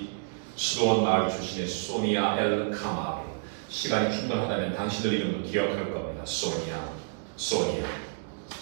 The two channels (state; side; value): silent; left; digital silence